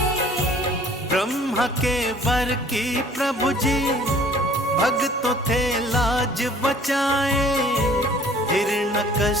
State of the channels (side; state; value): both; normal; correlation 0.53